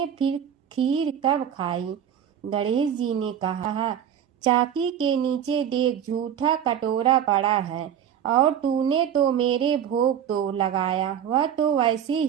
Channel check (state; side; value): quieter; left; 9.3 dB